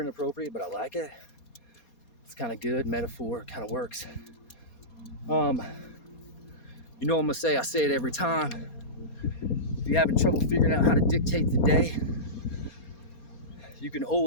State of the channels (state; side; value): late; right; 4.2 ms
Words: inappropriate, but I like it. It's kind of good. Metaphor kind of works. You know what I'm gonna say? I say it every time. If you're having trouble figuring out how to dictate the day, you can